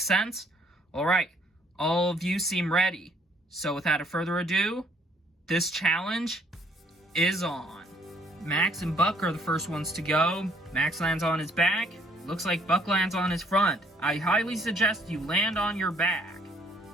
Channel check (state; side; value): normal; both; correlation 0.63